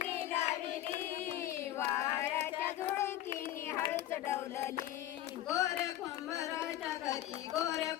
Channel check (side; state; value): right; quieter; 13.2 dB